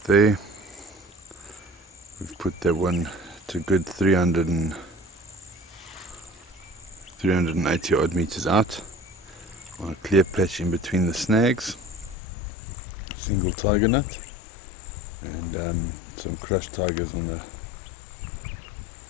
there. We've put that one to good 380 odd meters out on a clear patch in between the snags, single tiger nut, and some crushed tigers on the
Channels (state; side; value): drops out; right; at 12.2 s